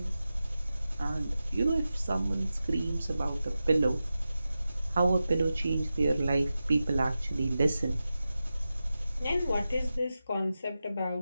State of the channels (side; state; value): both; inverted; correlation -0.93